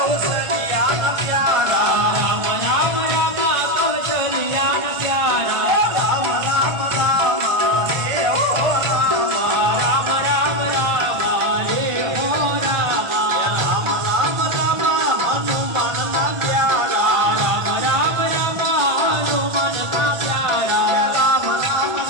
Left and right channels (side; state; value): left; late; 1.4 ms